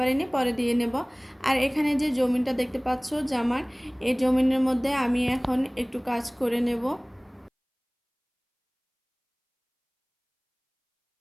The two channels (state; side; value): identical; both; correlation 1.00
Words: পরে দিয়ে নেব। আর এখানে যে জমিনটা দেখতে পাচ্ছ জামার, এই জমিনের মধ্যে আমি এখন একটু কাজ করে নেব।